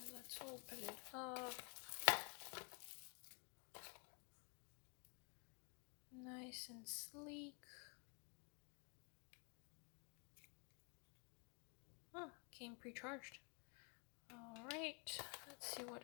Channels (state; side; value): quieter; right; 37.4 dB